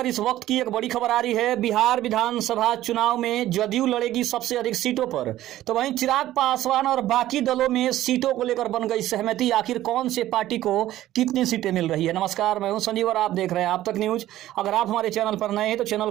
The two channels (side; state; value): left; quieter; 14.1 dB